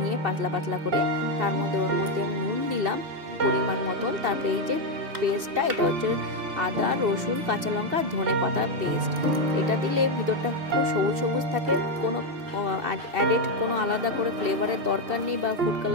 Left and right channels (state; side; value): late; left; 2.7 ms